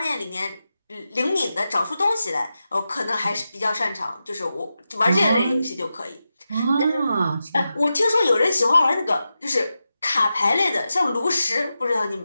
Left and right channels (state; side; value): inverted; both; correlation -0.91